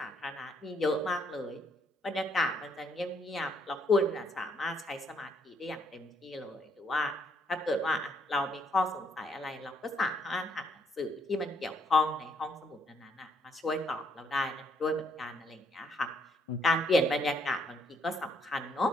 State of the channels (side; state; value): both; normal; correlation 0.71